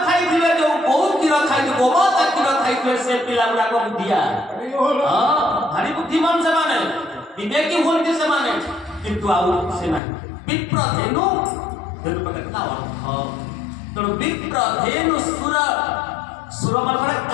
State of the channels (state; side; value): drops out; right; at 10.0 s